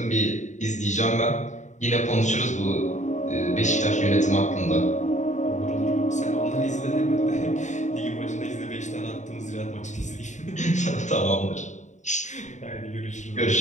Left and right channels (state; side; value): late; right; 0.35 ms